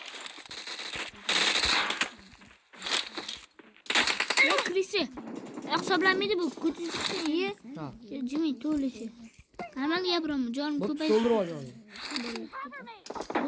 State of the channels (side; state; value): both; identical; correlation 1.00